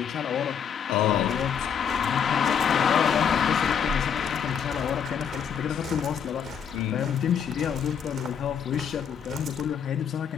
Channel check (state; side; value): quieter; right; 7.6 dB